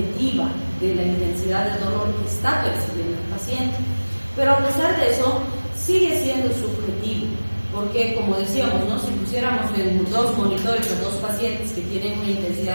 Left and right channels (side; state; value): both; inverted; correlation -1.00